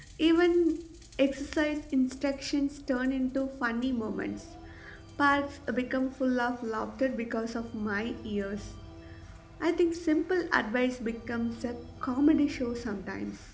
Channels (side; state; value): both; identical; correlation 1.00